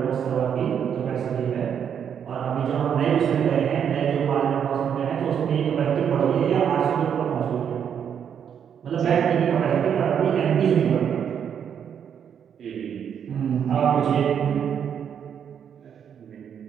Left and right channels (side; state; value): left; quieter; 8.2 dB